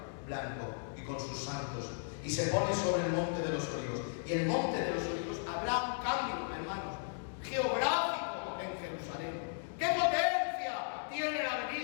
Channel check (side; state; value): right; silent; digital silence